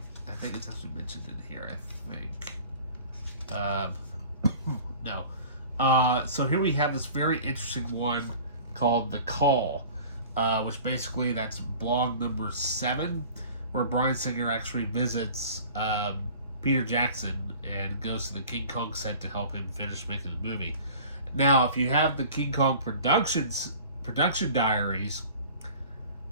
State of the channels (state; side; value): inverted; both; correlation -0.44